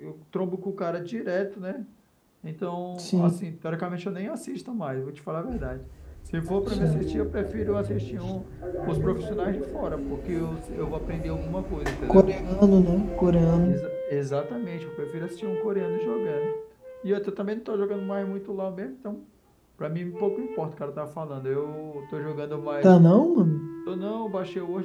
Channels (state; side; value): identical; both; correlation 1.00